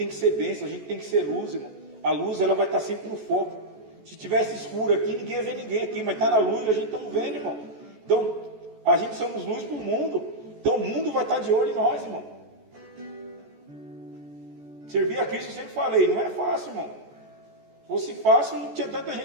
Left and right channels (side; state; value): left; late; 14 ms